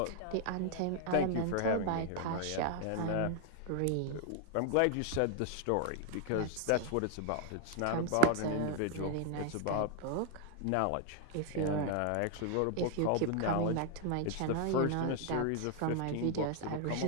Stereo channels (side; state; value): both; different; correlation 0.00